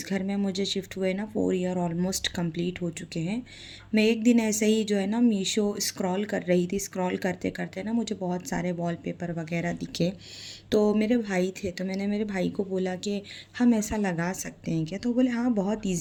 घर में मुझे शिफ्ट हुए ना 4 ईयर ऑलमोस्ट कंप्लीट हो चुके हैं। मैं एक दिन ऐसे ही जो है ना मीशो स्क्रॉल कर रही थी, स्क्रॉल करते करते ना मुझे बहुत सारे वॉलपेपर वगैरह दिखे। तो मेरे भाई थे, तो मैंने मेरे भाई को बोला कि हम ऐसा लगा सकते हैं क्या? तो बोले हाँ बहुत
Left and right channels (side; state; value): both; identical; correlation 1.00